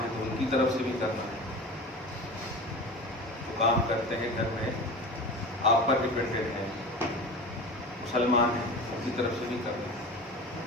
ہیں تو ان کی طرف سے بھی کرنا ہے۔ جو کام کرتے ہیں گھر میں، آپ پر ڈپینڈنٹ ہیں، مسلمان ہیں، ان کی طرف سے بھی کرنا ہے۔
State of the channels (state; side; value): normal; both; correlation 0.33